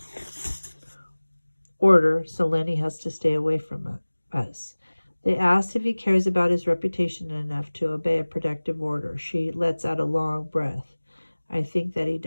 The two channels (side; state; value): both; inverted; correlation -1.00